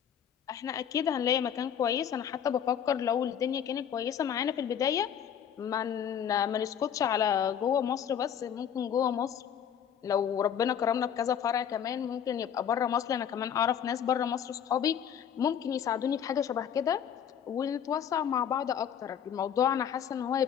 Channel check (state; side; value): quieter; right; 8.7 dB